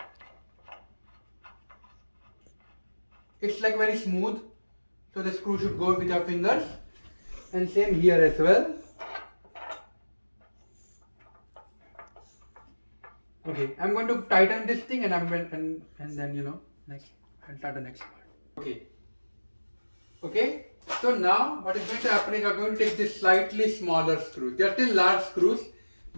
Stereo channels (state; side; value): inverted; both; correlation -1.00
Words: It's like very smooth, so the screw should go with your fingers, and same here as well. Okay, I'm going to tighten this thing, and then you know, next I'll start the next part. Okay. So now what is going to happen is I'm going to take this slightly smaller screws. They are still large screws,